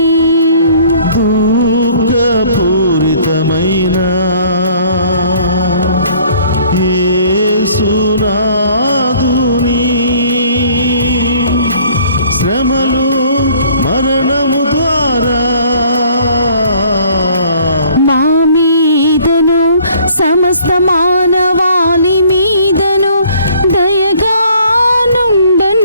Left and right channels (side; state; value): both; inverted; correlation -0.57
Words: దుఃఖపూరితమైన యేసునాదుని శ్రమలు మరణము ద్వారా మా మీదను సమస్త మానవాళి మీదను దయగా